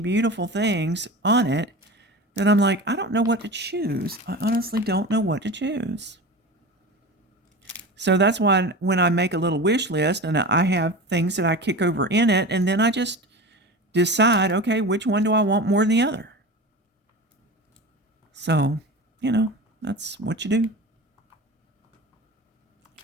things on it that I'm like, I don't know what to choose. I honestly don't know what to choose. So that's why when I make a little wish list and I have things that I kick over in it, and then I just decide, okay, which one do I want more than the other? So, that's what you do.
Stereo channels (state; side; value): normal; both; correlation 0.30